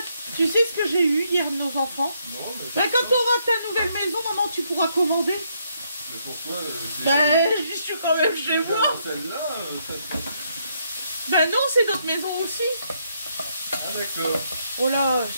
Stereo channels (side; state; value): both; inverted; correlation -0.74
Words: Tu sais ce que j'ai eu hier de nos enfants? Non, mais bah, quand tu auras ta nouvelle maison, maman, tu pourras commander. Mais pourquoi Bah, je suis quand même chez moi. Celle-là, Bah non, c'est notre maison aussi. Ah d'accord. Oh là,